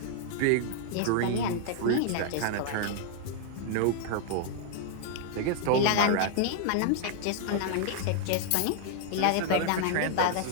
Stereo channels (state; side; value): different; both; correlation 0.00